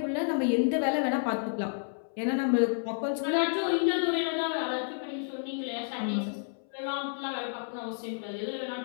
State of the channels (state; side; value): silent; right; 58 dB below the other